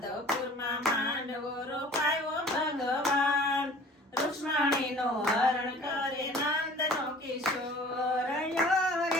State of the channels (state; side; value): normal; both; correlation 0.47